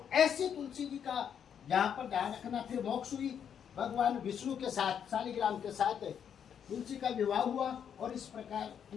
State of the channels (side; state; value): right; quieter; 8.2 dB